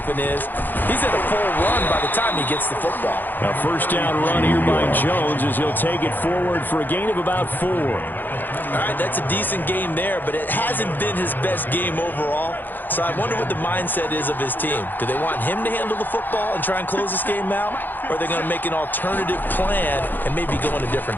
is. He's at a full run by the time he gets the football. A first down run here by Jones as he'll take it forward for a gain of about 4. All right, that's a decent game there, but it hasn't been his best game overall. So I wonder what the mindset is of his team. Do they want him to handle the football and try and close this game out? Or are they going to make an alternative plan and maybe go in a different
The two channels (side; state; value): right; late; 0.088 ms